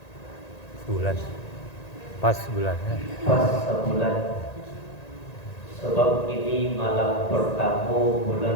Sebulan. Pas bulannya. Pas sebulan. Sebab ini malam pertama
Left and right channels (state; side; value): late; right; 1.9 ms